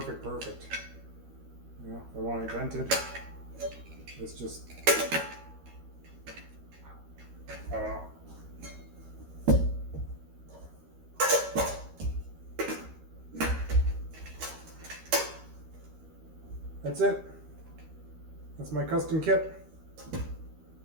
If I want it vented, it's just, I don't know. That's it. That's my custom kit.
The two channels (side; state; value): left; late; 13 ms